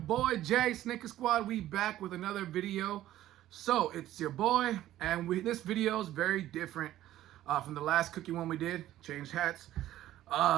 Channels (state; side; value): quieter; left; 13.7 dB